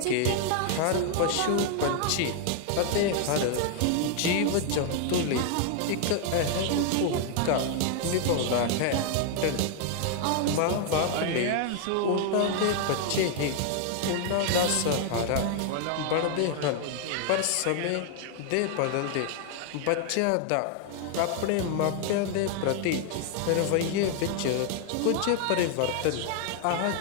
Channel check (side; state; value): both; different; correlation 0.00